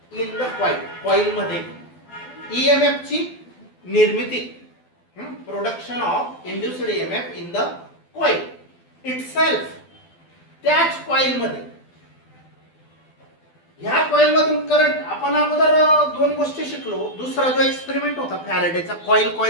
इन द कॉइल मध्ये ईएमएफ ची निर्मिती production of induced EMF in the coil itself. त्याच कॉइल मध्ये ह्या कॉइल मधून करंट आपण अगोदर दोन गोष्टी शिकलो. दुसरा जो एक्सपेरिमेंट होता फॅरेडेचा कॉइल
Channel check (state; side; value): late; right; 12 ms